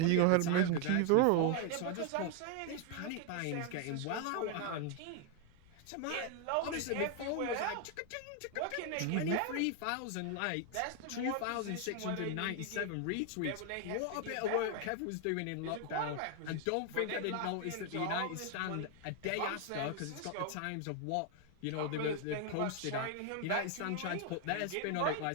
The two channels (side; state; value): both; different; correlation 0.01